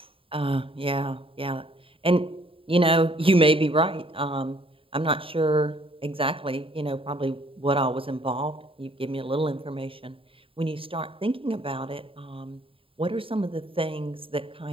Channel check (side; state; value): left; late; 0.26 ms